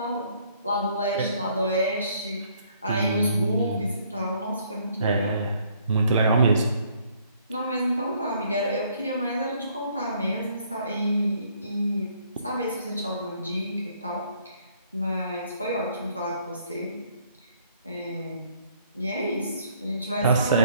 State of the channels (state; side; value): inverted; both; correlation -0.64